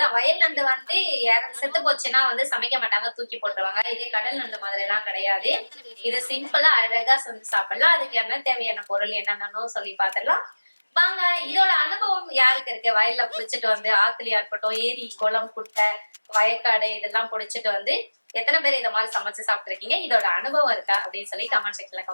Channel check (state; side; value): inverted; both; correlation -1.00